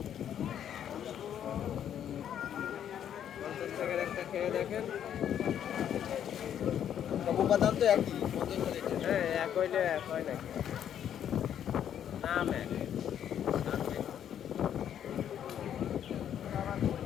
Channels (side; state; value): right; quieter; 9.7 dB